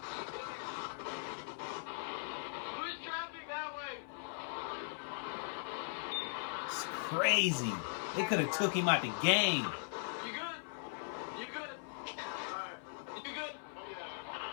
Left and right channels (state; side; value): silent; right; 51 dB below the other